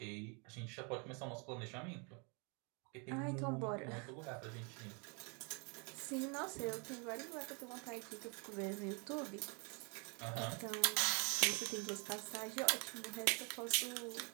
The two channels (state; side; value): quieter; left; 34.1 dB